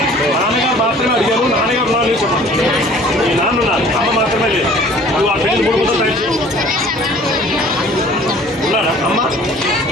నాన్నగారు మాత్రమే అడిగారు నాన్నగారు ఉన్నారు లేదు చెప్పండి మీ నాన్న ఉన్నారు అమ్మ మాత్రమే లేదు నువ్వు ఆ పెళ్లి మూడు ముద్దలు తయారు ఉన్నాడా అమ్మ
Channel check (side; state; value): both; normal; correlation 0.51